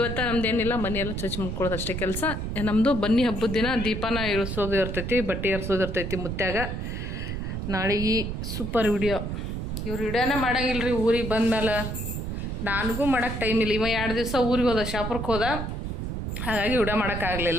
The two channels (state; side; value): noise; right; rumble, 4 dB below the sound